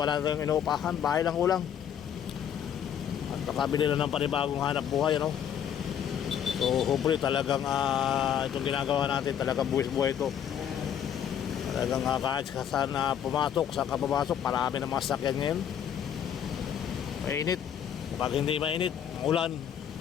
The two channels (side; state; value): right; quieter; 9.1 dB